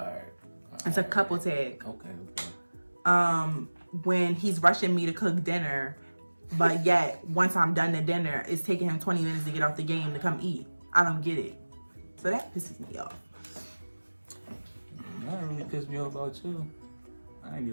It's a couple tag. Okay. When he's rushing me to cook dinner, but yet once I'm done the dinner, it's taking him 20 minutes to get off the game to come eat. I don't get it. So that pisses me off. That really pissed me off about you. I ain't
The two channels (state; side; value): inverted; both; correlation -1.00